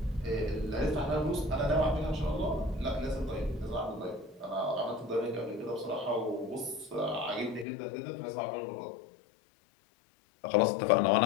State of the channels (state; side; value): drops out; right; at 7.7 s